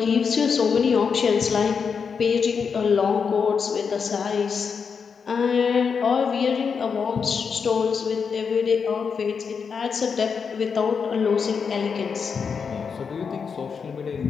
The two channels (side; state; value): right; quieter; 6.0 dB